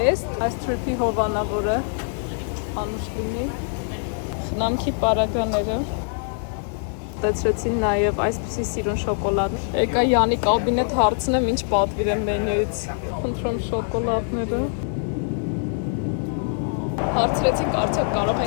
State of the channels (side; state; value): right; silent; digital silence